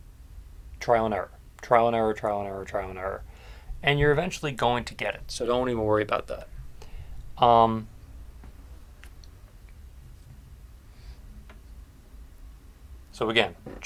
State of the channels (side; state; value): both; identical; correlation 1.00